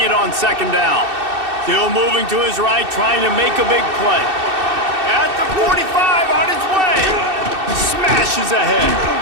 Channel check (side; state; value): left; late; 2.6 ms